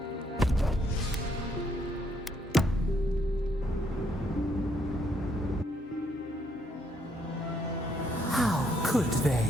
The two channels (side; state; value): both; normal; correlation 0.72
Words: How could they?